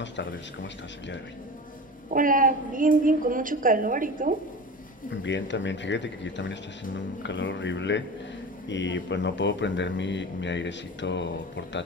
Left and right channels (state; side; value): normal; both; correlation 0.32